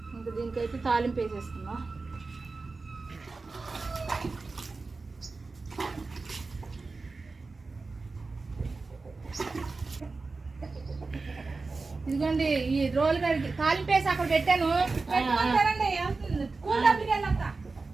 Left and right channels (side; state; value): left; quieter; 3.9 dB